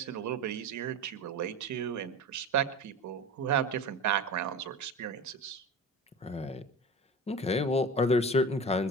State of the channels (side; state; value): both; normal; correlation 0.33